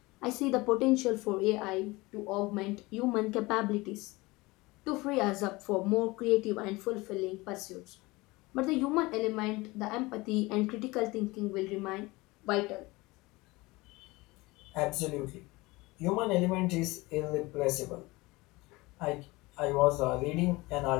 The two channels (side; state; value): right; quieter; 22.1 dB